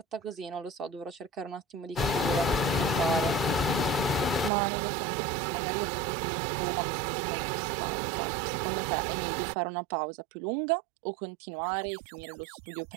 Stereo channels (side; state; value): left; drops out; at 4.5 s